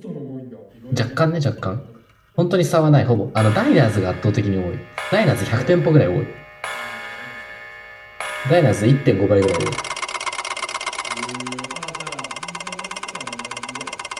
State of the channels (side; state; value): both; identical; correlation 1.00